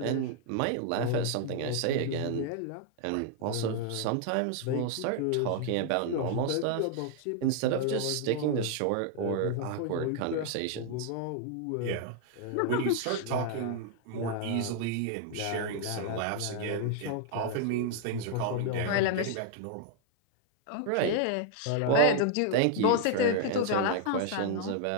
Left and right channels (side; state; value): both; different; correlation 0.00